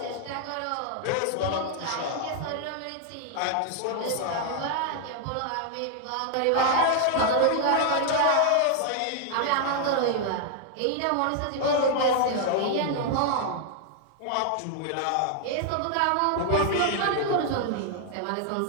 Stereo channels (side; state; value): both; different; correlation 0.00